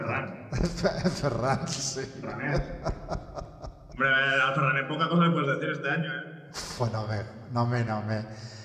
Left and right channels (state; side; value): identical; both; correlation 1.00